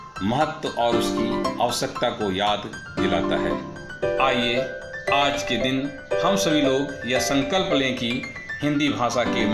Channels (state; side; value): identical; both; correlation 1.00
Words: महत्व और उसकी आवश्यकता को याद दिलाता है। आइए आज के दिन हम सभी लोग यह संकल्प लें कि हिंदी भाषा के